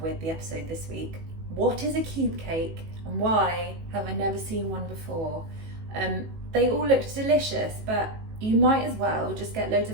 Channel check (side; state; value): left; late; 18 ms